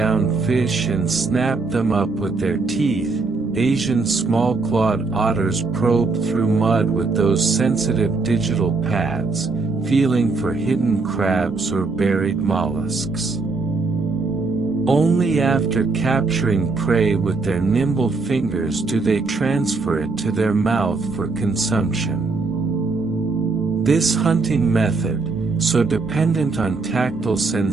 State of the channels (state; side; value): quieter; left; 4.0 dB